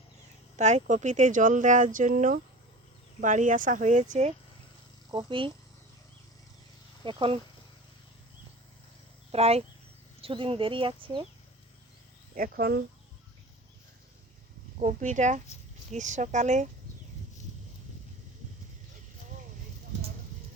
তাই কপিতে জল দেওয়ার জন্য বাড়ি আসা হয়েছে। কপি এখন প্রায় কিছুদিন দেরি আছে। এখন কপিটা গ্রীষ্মকালে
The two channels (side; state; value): both; normal; correlation 0.35